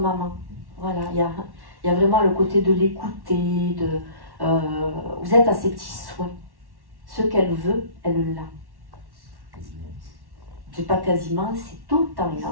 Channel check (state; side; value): late; left; 1.1 ms